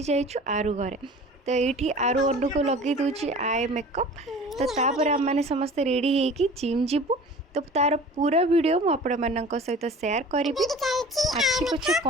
जाइछु आरु घरे। तो ये आरु अनु को लगे दूची आई मेकअप। तो तापर आम मैंने समस्ते रेडी होगी जिम जीवु। तो तार पूरा वीडियो मु आपण मानक सहित शेयर करी। आखि पछे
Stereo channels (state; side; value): normal; both; correlation 0.42